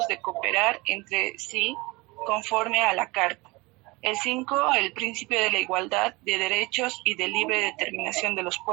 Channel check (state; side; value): quieter; left; 24.0 dB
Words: de cooperar entre sí conforme a la Carta. El 5, el principio de la igualdad de derechos y de libre determinación de los